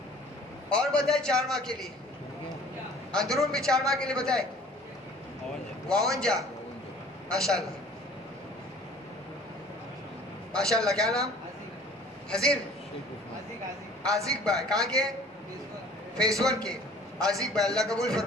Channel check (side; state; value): both; normal; correlation 0.50